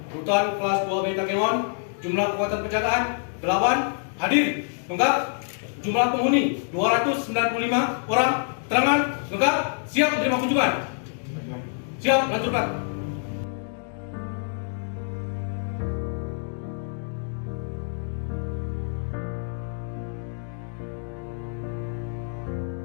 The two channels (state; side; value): silent; right; 61 dB below the other